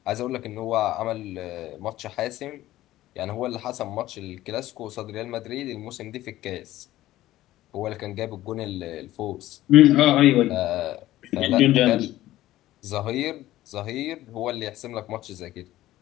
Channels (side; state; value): right; quieter; 15.2 dB